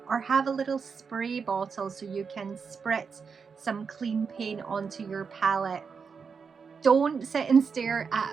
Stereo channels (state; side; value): quieter; left; 5.7 dB